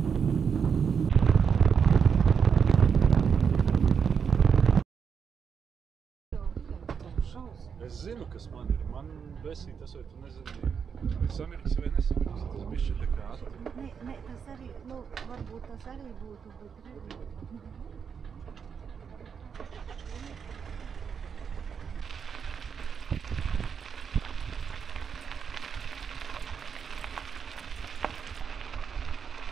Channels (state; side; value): quieter; left; 6.7 dB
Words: Es zinu, kas man ir. Man besī tas, vai tu nezini, samiriks vai nesamiriks. Tas bišķi tā kā atri. Nē, tas arī, nu, varbūt tas arī būtu, bet redzi.